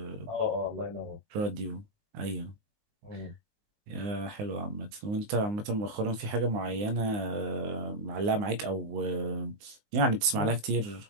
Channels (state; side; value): late; left; 19 ms